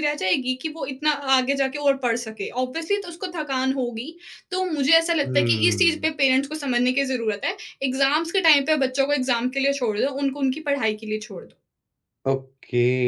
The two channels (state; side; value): identical; both; correlation 1.00